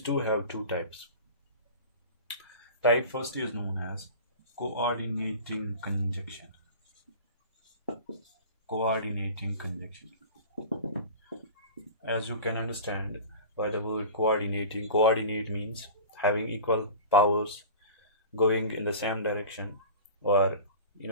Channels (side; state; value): both; inverted; correlation -0.36